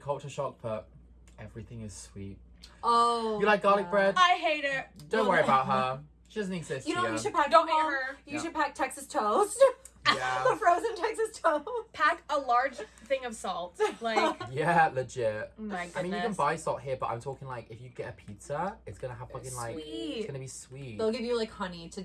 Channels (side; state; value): both; identical; correlation 1.00